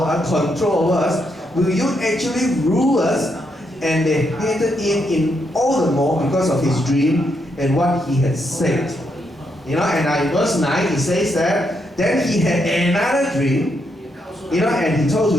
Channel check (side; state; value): both; normal; correlation 0.79